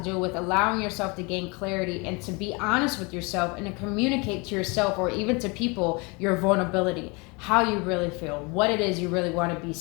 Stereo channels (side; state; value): right; quieter; 28.7 dB